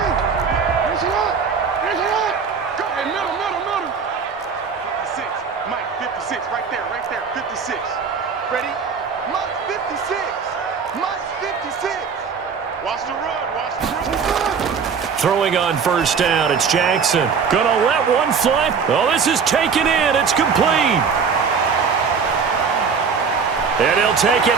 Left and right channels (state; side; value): quieter; left; 6.0 dB